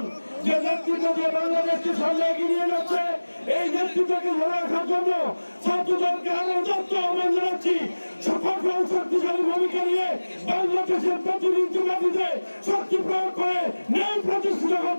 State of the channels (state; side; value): inverted; both; correlation -1.00